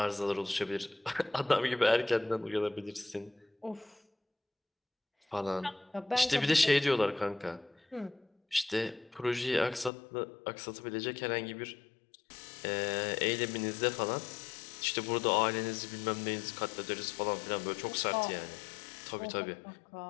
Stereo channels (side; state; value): right; drops out; at 9.9 s